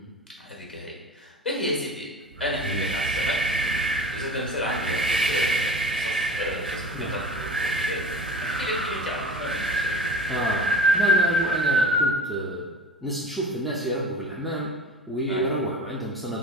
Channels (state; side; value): normal; both; correlation 0.37